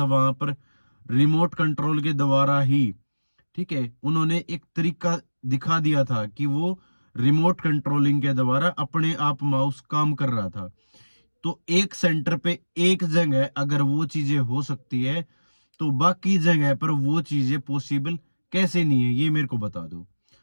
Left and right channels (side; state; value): both; inverted; correlation -1.00